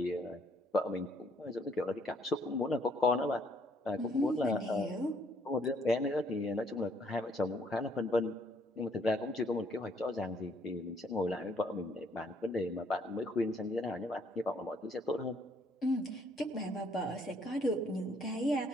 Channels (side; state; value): both; normal; correlation 0.67